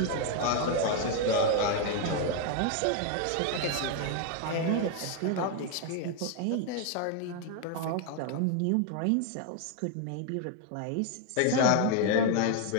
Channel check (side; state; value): both; different; correlation 0.01